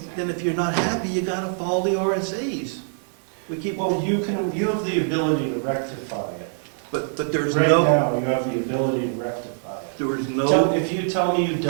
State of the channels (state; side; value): silent; left; digital silence